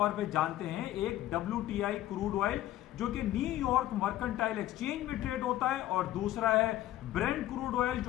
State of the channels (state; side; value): quieter; right; 14.1 dB